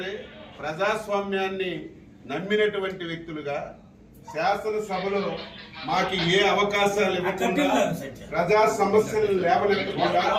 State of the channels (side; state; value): both; identical; correlation 1.00